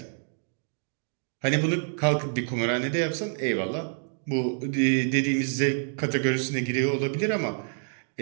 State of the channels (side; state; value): left; silent; digital silence